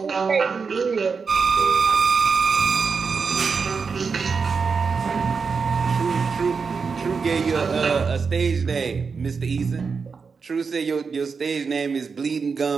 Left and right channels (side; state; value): left; quieter; 5.3 dB